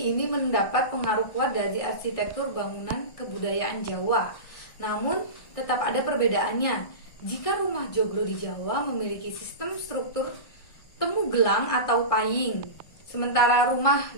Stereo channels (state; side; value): late; right; 1.6 ms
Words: ini mendapat pengaruh kuat dari arsitektur bangunan kebudayaan Jawa. Namun tetap ada perbedaannya. Jika rumah joglo di Jawa memiliki sistem struktur temu gelang atau paying, sementara rumah